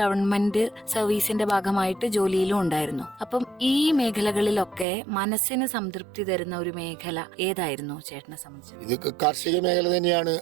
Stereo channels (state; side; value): drops out; left; at 4.9 s